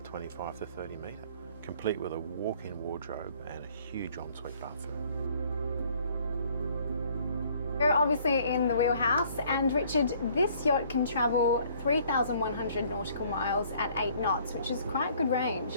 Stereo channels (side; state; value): both; inverted; correlation -0.60